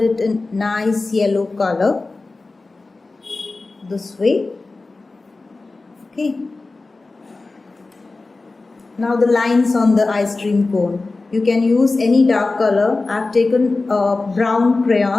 it in nice yellow color. This way. Okay. Now the lines on the ice cream cone. You can use any dark color. I've taken a brown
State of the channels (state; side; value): quieter; right; 3.5 dB